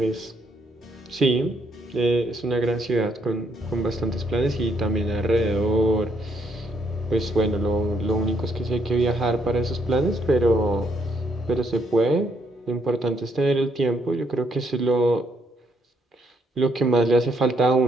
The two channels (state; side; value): normal; both; correlation 0.73